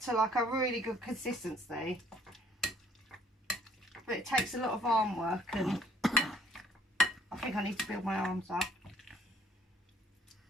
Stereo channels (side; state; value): both; normal; correlation 0.62